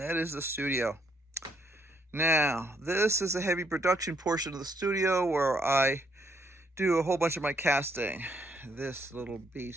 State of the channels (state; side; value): normal; both; correlation 0.72